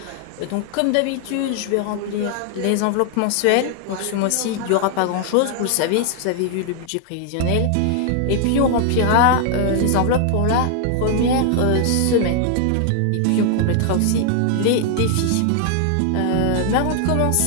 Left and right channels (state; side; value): different; both; correlation 0.00